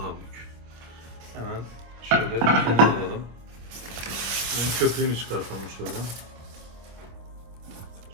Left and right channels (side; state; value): left; late; 25 ms